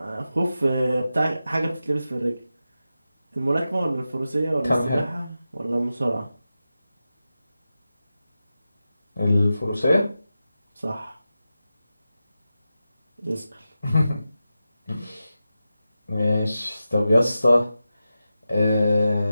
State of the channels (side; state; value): both; inverted; correlation -0.92